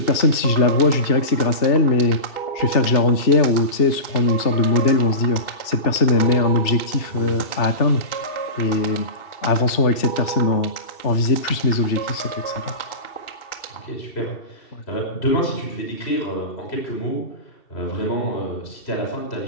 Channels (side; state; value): right; late; 2.7 ms